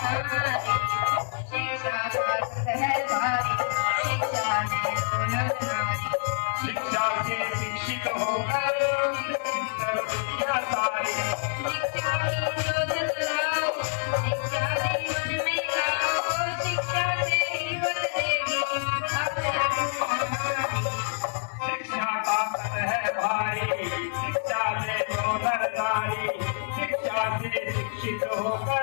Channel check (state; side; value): silent; right; digital silence